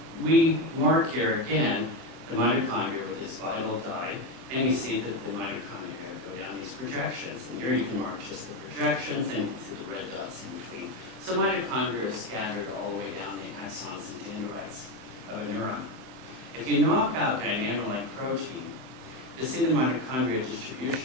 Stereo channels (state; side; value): late; left; 23 ms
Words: we mark here again the mitochondria with this vital dye, and you see that the mitochondria go down these projections. And here you can mark just the projections, and you can see the red dots in between. So mitochondria are scattered all the way down the axons and dendrites of a neuron. If you knock out dynamo-like protein, you'll see the mitochondria